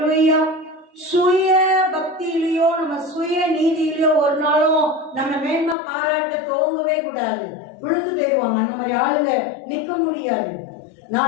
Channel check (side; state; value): right; drops out; at 5.8 s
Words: சுய பக்தியிலயோ நம்ம சுய நீதியிலயோ ஒரு நாளும் நம்ம மேன்மை பாராட்ட துவங்கவே கூடாது. விழுந்து போயிடுவாங்க. அந்த மாதிரி ஆளுங்க நிக்க முடியாது.